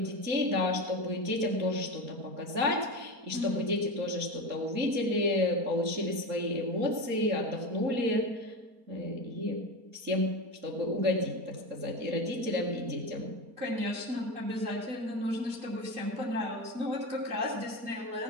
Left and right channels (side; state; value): left; late; 4.2 ms